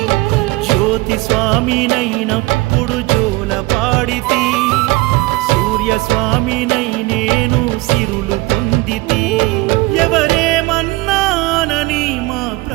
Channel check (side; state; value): left; quieter; 21.6 dB